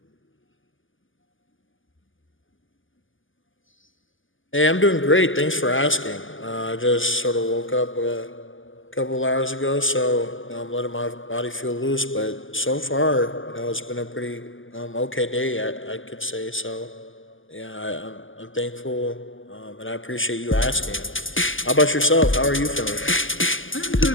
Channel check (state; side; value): late; right; 0.58 ms